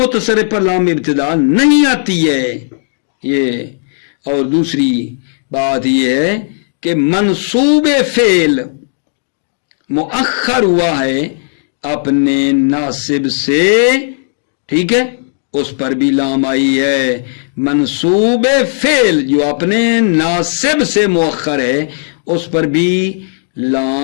پر لام ابتدا نہیں آتی ہے. یہ اور دوسری بات یہ ہے کہ منصوب فعل مؤخر ہوا ہے اپنے ناصب سے, ٹھیک ہے, اس پر بھی لام آئی ہے. منصوب فعل جو اپنے ناصب سے مؤخر ہے اس پر بھی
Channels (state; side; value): silent; right; digital silence